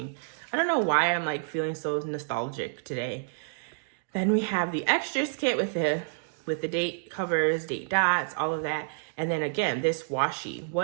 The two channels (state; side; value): silent; left; digital silence